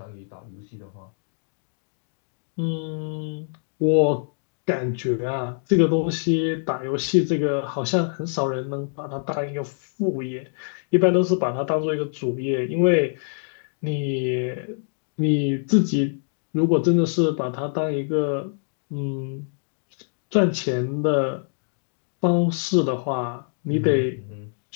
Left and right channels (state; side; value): silent; right; digital silence